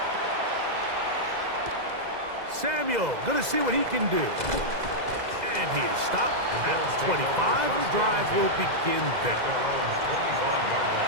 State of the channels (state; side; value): late; left; 2.0 ms